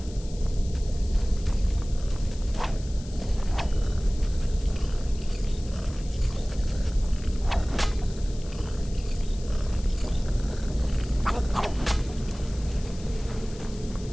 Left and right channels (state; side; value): noise; left; hiss, 19 dB below the sound